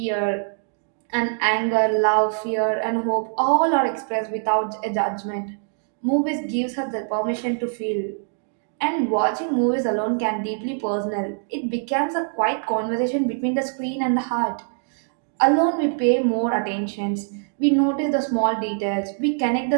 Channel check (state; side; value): silent; left; digital silence